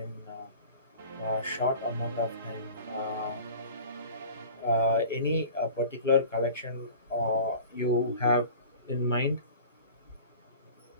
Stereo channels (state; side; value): inverted; both; correlation -0.41